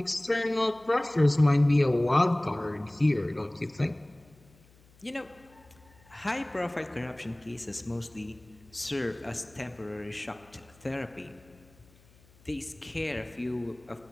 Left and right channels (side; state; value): left; noise; hum, 28 dB below the sound